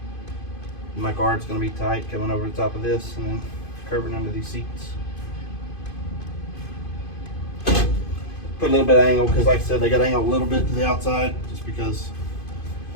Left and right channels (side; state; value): right; late; 2.5 ms